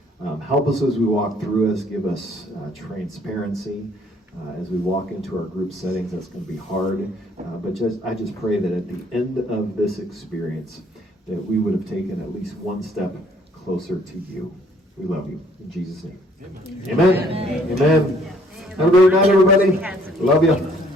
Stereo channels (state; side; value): normal; both; correlation 0.62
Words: Help us as we walk through this, give us transparency as we walk into our group settings. That's going to be hard, but I just pray that at the end of this experience, that we would have taken at least one step closer to you. We love you. In Jesus' name. Amen. Amen. Have a great night, everybody. Love you.